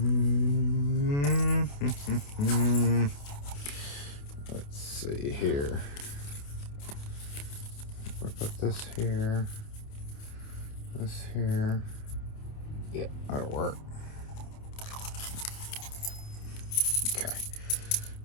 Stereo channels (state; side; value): late; right; 28 ms